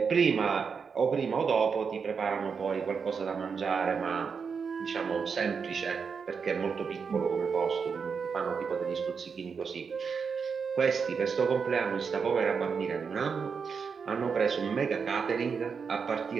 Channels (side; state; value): left; quieter; 5.8 dB